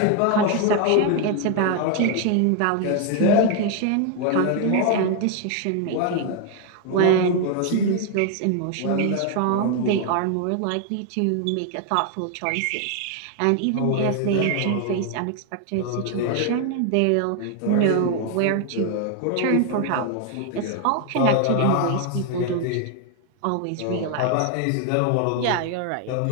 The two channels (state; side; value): different; both; correlation 0.00